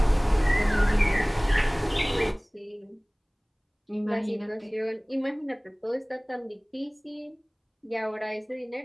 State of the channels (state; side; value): identical; both; correlation 1.00